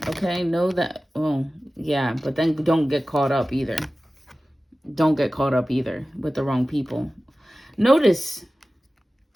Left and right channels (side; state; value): both; normal; correlation 0.96